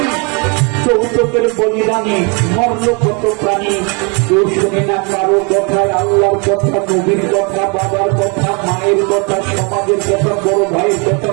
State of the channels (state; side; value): quieter; left; 33.2 dB